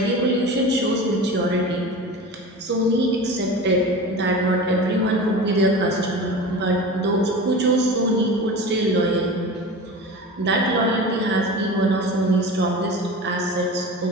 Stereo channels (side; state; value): both; normal; correlation 0.33